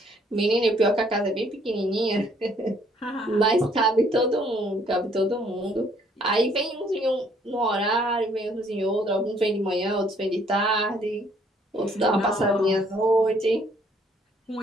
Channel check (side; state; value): both; normal; correlation 0.64